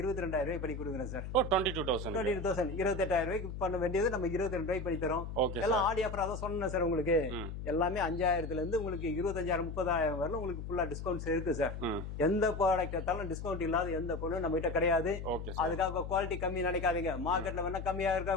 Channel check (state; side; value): noise; left; hum, 7 dB below the sound